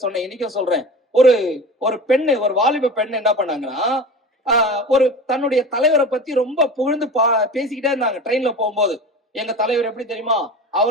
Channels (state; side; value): normal; both; correlation 0.33